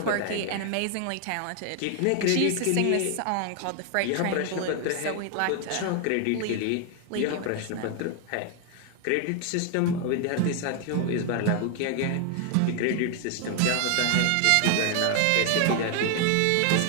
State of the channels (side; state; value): both; different; correlation 0.00